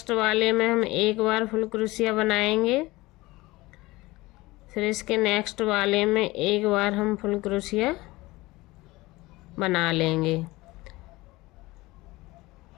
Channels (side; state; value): right; quieter; 20.4 dB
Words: वाले में हम एक बार फुल क्रोशिया बनाएंगे, फिर इसके नेक्स्ट वाले में एक बार हम फुल क्रोशिया बना लेंगे।